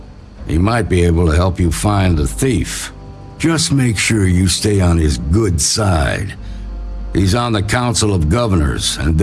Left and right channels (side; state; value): both; identical; correlation 1.00